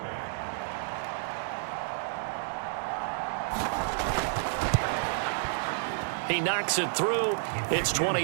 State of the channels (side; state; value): left; silent; digital silence